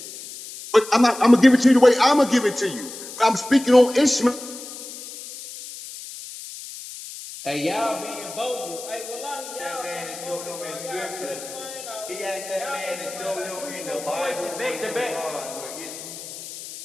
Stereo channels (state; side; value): noise; left; hiss, 12 dB below the sound